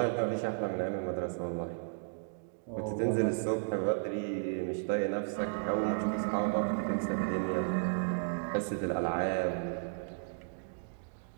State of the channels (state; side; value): silent; left; digital silence